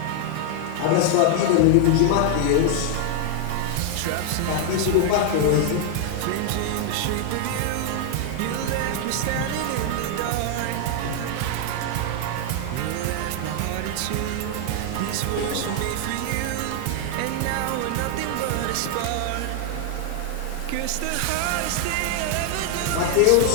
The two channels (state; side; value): different; both; correlation 0.00